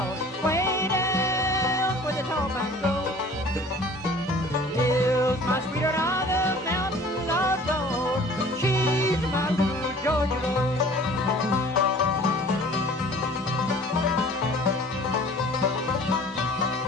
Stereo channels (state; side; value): normal; both; correlation 0.48